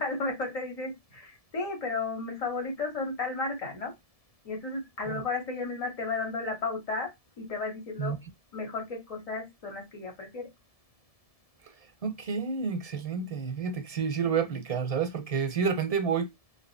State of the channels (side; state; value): right; late; 1.7 ms